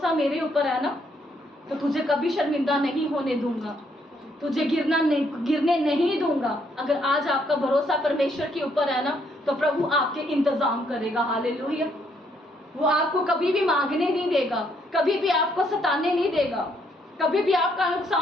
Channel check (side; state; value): both; normal; correlation 0.71